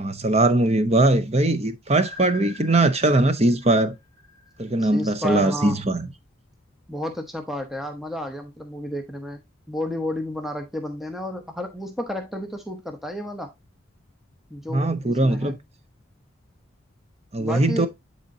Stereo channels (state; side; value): normal; both; correlation 0.58